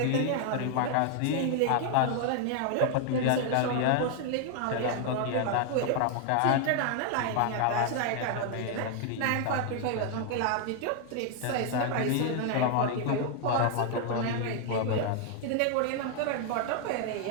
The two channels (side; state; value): both; different; correlation 0.00